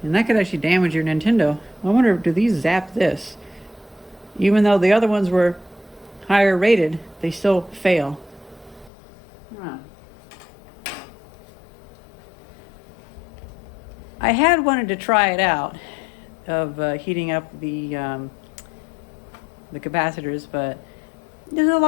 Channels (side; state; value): right; drops out; at 8.9 s